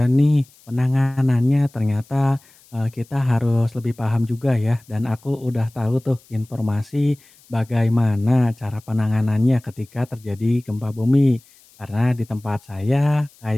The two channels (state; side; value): noise; left; hiss, 28 dB below the sound